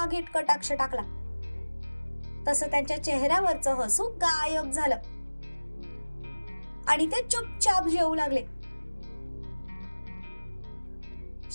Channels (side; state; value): both; inverted; correlation -1.00